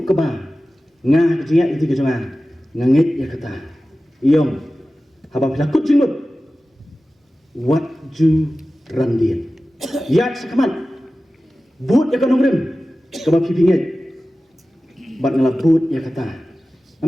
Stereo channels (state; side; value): normal; both; correlation 0.96